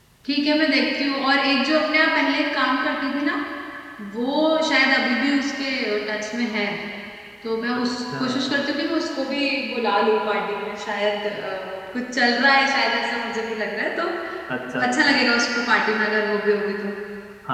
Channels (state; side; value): identical; both; correlation 1.00